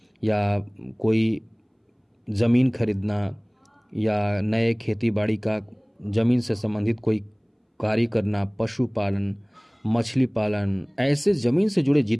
या कोई ज़मीन खरीदना या नए खेती बाड़ी का ज़मीन से संबंधित कोई कार्य करना, पशुपालन, मछली पालन, ऐसे ज़मीन से जुड़े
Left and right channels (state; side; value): identical; both; correlation 1.00